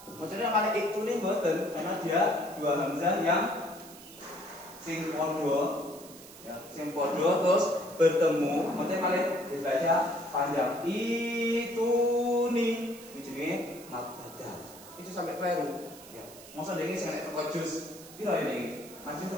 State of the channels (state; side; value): noise; right; hiss, 18 dB below the sound